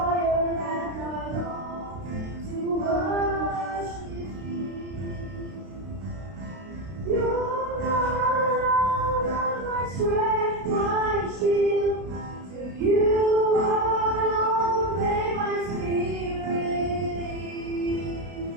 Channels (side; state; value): left; late; 32 ms